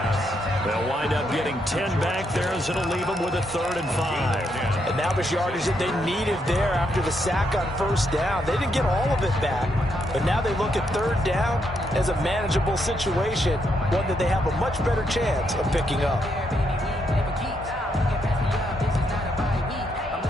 They'll wind up getting 10 back there as it'll leave them with a 3rd and 5. And that was yardage that they needed there after the sack on 1st down. They didn't get all of it back, but now they look at 3rd down as a manageable situation, one that they have a much better chance of picking up.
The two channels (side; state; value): both; normal; correlation 0.78